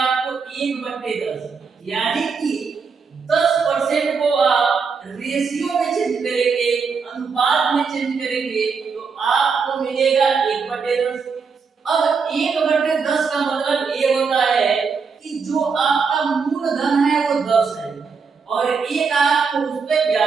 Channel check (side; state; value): left; quieter; 5.4 dB